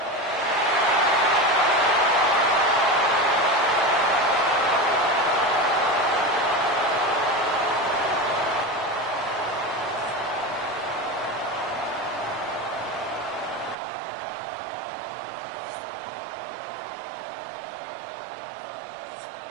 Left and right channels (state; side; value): drops out; left; at 13.8 s